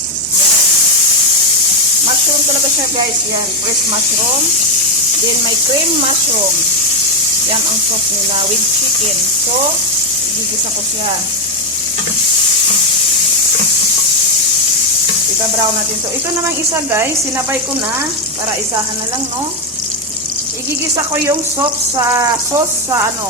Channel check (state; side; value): normal; both; correlation 0.06